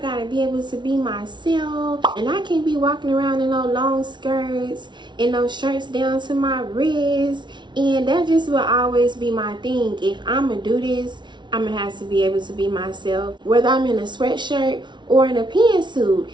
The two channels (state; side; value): late; left; 0.23 ms